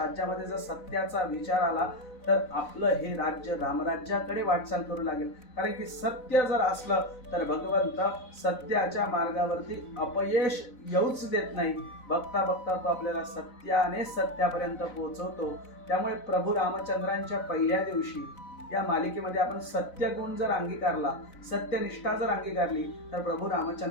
जर सत्याचा विचार आला तर आपलं हे राज्य रामराज्याकडे वाटचाल करू लागेल. कारण की सत्य जर असलं तर भगवंत सत्याच्या मार्गावरती अपयश येऊच देत नाही. बघता बघता तो आपल्याला सत्याने सत्यापर्यंत पोहोचवतो. त्यामुळे प्रभू रामचंद्रांच्या पहिल्या दिवशी या मालिकेमध्ये आपण सत्यगुण जर अंगीकारला, सत्यनिष्ठा जर अंगीकारली, तर प्रभू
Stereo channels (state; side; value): late; right; 4.0 ms